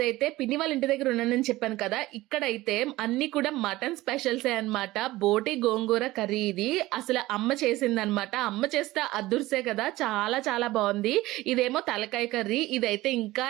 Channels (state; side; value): quieter; left; 18.0 dB